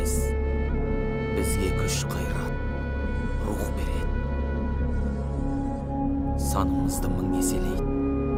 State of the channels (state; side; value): identical; both; correlation 1.00